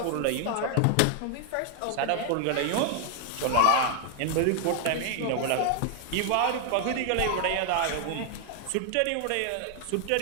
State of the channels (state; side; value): different; both; correlation 0.00